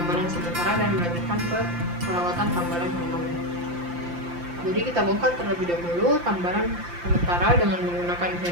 sementara dan melanjutkan ke perawatan tambalan permanen. Jadi kita bongkar terlebih dahulu tambalan sementara dengan menggunakan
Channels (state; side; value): late; left; 5.8 ms